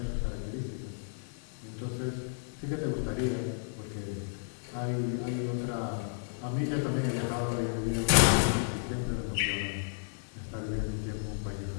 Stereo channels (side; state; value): right; silent; digital silence